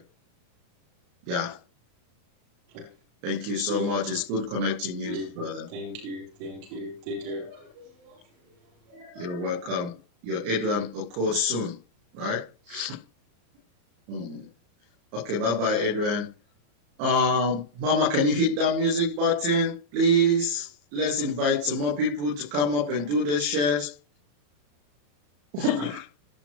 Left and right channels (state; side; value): late; left; 35 ms